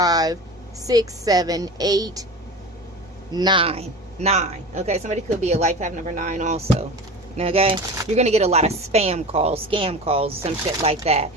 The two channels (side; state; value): both; normal; correlation 0.32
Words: 6, 7, 8, 9. 9. Okay, somebody could be a life path number 9 also. Okay, you're gonna get a lot of spam calls, scam calls, some shit like that.